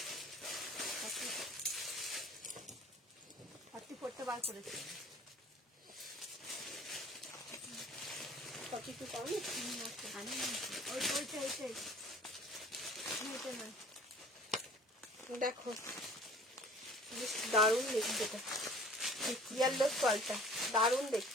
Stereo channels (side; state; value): both; normal; correlation 0.48